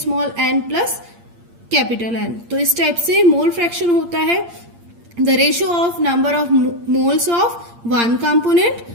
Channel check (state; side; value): late; left; 8.7 ms